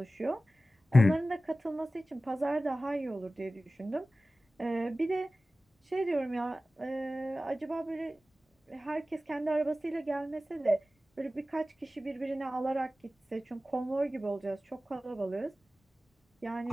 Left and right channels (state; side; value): normal; both; correlation 0.96